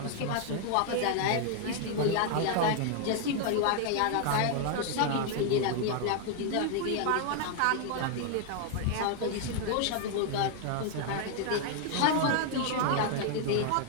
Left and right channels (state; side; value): different; both; correlation 0.00